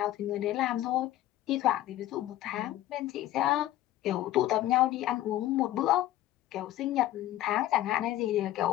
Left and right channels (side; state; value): right; quieter; 14.3 dB